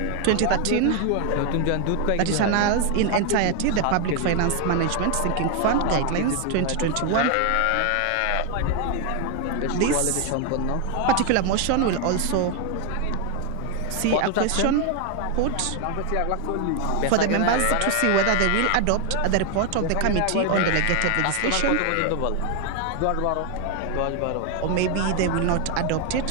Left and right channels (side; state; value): both; different; correlation 0.01